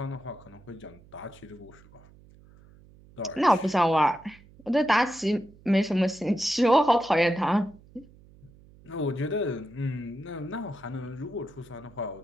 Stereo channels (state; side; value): noise; right; hum, 25 dB below the sound